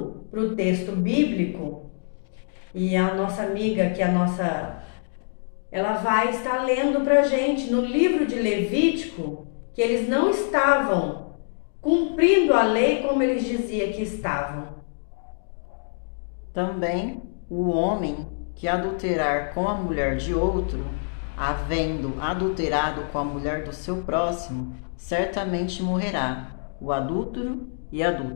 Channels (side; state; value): right; silent; digital silence